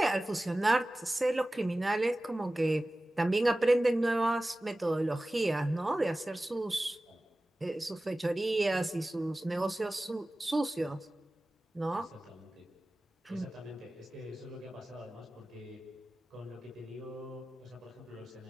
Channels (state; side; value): normal; both; correlation 0.97